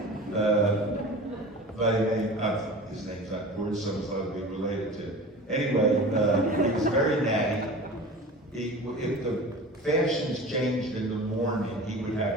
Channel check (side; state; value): both; normal; correlation 0.36